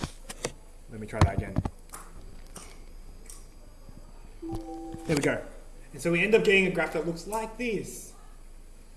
Let me try that again. There we go. And so we end up getting a graph that looks like this.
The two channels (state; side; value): identical; both; correlation 1.00